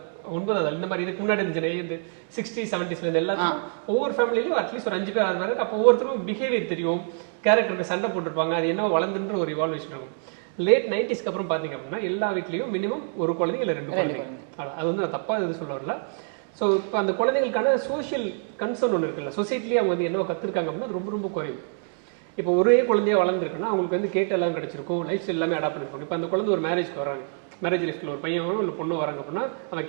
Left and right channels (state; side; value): silent; left; 58 dB below the other